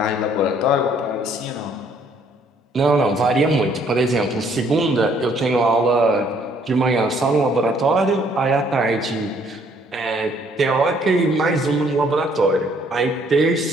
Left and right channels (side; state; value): both; normal; correlation 0.64